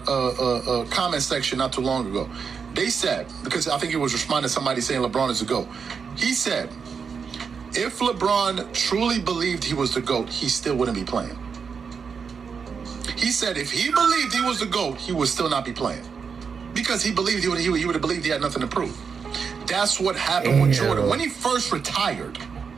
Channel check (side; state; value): left; quieter; 6.0 dB